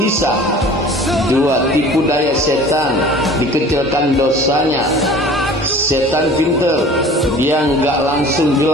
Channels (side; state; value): both; normal; correlation 0.44